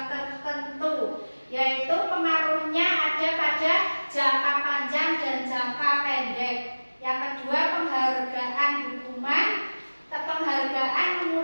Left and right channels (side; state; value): both; inverted; correlation -1.00